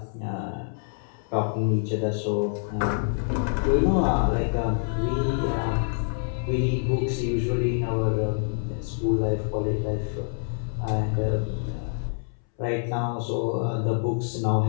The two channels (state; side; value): silent; right; 61 dB below the other